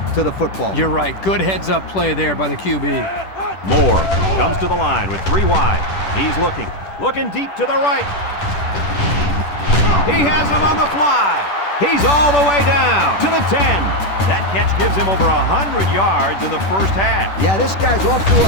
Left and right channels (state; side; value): late; right; 10 ms